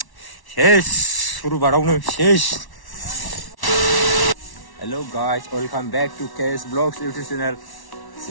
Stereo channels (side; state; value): right; late; 1.1 ms